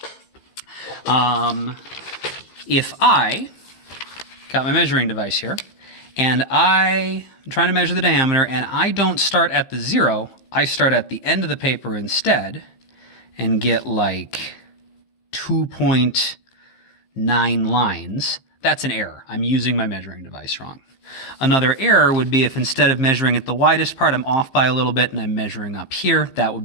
If I got my measuring device here, and I'm trying to measure the diameter, and I don't start at the 0, I start at the end of the paper instead, and get like 2.9 lines, that's an error. I'm using my measuring device wrong. Another error would be if instead of measuring at the widest part, I'm off by a little bit and I'm measuring up here. That would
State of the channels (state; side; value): late; right; 15 ms